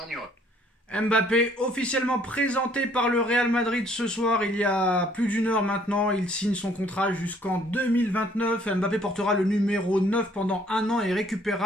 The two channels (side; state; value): both; normal; correlation 0.61